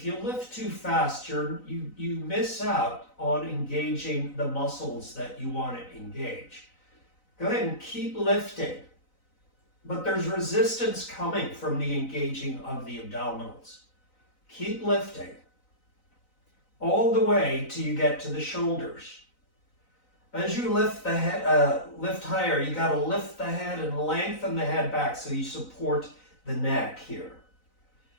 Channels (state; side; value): late; right; 3.9 ms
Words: you lift too fast, you miss out on engaging the muscles that you want to engage. Go ahead and keep lifting. But there's resistance coming from the engaging of the abdominals. Keep lifting all the way till you get to the shoulders. As you lift the head, lift higher, you got to lift the head and lengthen the head back so you support the neck here.